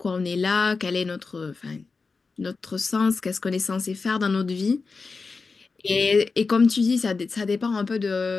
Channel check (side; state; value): right; quieter; 4.4 dB